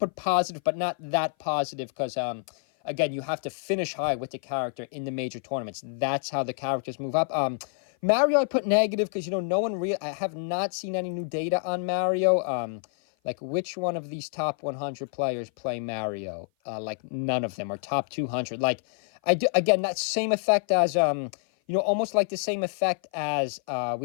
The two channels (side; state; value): right; silent; 56 dB below the other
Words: positive, but not that positive because... Again, you have to finish high with the character in the major tournaments. That's how the characters move up. Mario, I put negative because, you know, I have not seen any new data on Mario. Like, which one of these top 100 players play Mario? Like, none of them, or top 200. Like, again, that same effect as, you know, almost like the same effect as